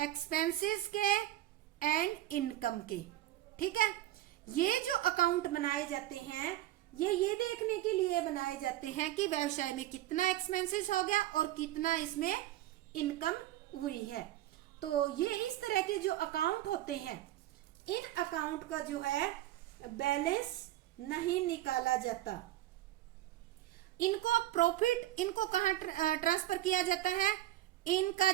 के एंड इनकम के, ठीक है। ये जो अकाउंट बनाए जाते हैं ये देखने के लिए बनाए जाते हैं कि व्यवसाय में कितना एक्सपेंसेस हो गया और कितना इसमें इनकम हुई है। तो ये इस तरह के जो अकाउंट होते हैं, इन अकाउंट का जो है बैलेंस नहीं निकाला जाता। इनको प्रॉफिट, इनको कहां ट्रांसफर किया जाता है, इनका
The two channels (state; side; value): quieter; left; 14.6 dB